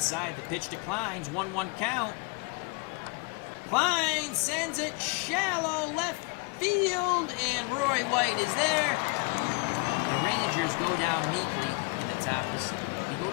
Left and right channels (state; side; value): quieter; right; 28.0 dB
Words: The pitch to Kleins. 1-1 count. Klein sends it shallow left field, and Roy White is there. The Rangers go down meekly in the top of the 7th. We go to